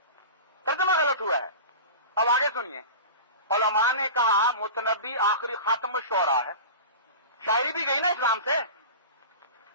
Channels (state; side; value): inverted; both; correlation -0.32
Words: ترجمہ غلط ہوا ہے. اب آگے سنیے, علماء نے کہا متنبی آخری خاتم الشعراء ہے, شاعری بھی گئی نا اسلام سے,